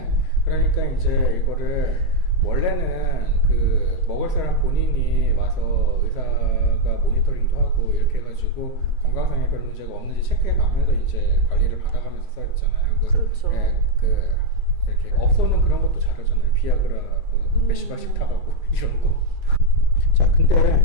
그러니까 이제 이거를 원래는 그 먹을 사람 본인이 와서 의사가 모니터링도 하고 이렇게 해가지고 건강상에 별 문제가 없는지 체크해가면서 이제 관리를 받아가면서 써야 되잖아요. 그렇죠. 이렇게 업소는 그런 것도 잘하잖아요. 비아그라 몇십 알씩 타가고 이런 거. 자,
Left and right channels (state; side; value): late; right; 2.6 ms